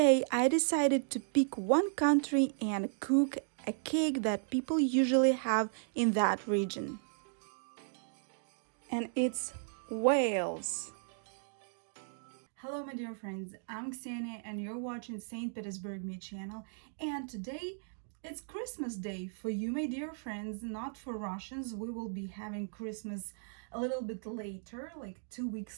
I decided to pick one country and cook a cake that people usually have in that region. And it's Wales. Hello, my dear friends. I'm Ksenia, and you're watching St.Petersburg-me channel. And today it's Christmas Day for you, my dear friends, not for Russians. We will be having Christmas a little bit later, like 2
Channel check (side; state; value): left; silent; digital silence